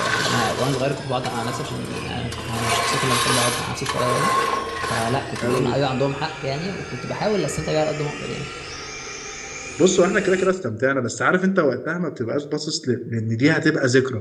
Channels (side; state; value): both; identical; correlation 1.00